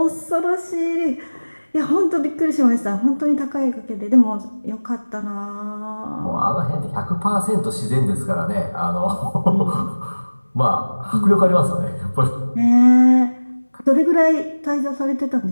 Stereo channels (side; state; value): both; inverted; correlation -1.00